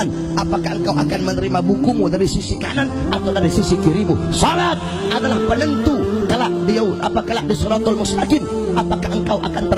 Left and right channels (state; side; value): identical; both; correlation 1.00